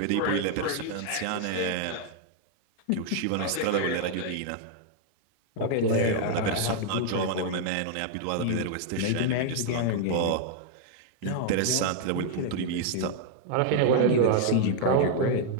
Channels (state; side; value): different; both; correlation 0.00